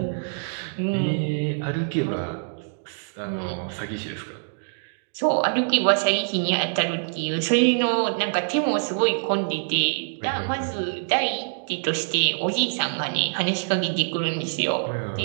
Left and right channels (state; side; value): silent; left; digital silence